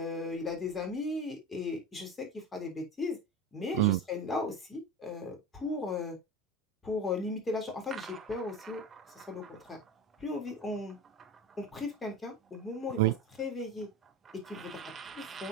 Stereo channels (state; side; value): normal; both; correlation 0.28